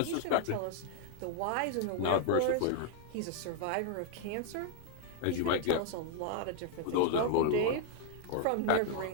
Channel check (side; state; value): both; different; correlation 0.00